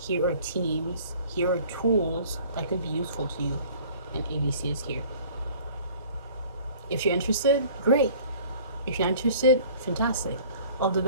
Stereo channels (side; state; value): both; inverted; correlation -0.50